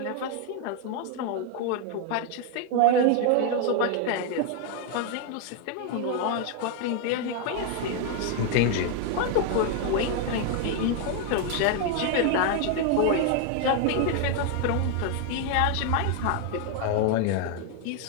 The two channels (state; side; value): different; both; correlation 0.00